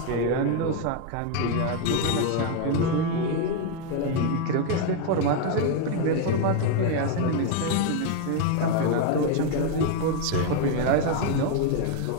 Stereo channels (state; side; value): different; both; correlation 0.01